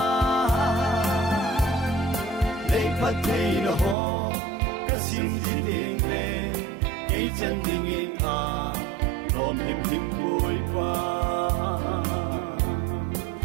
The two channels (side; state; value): left; drops out; at 4.0 s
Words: nei pathei no ho kasim ji ding le ei chan ding in a rom him him koi pa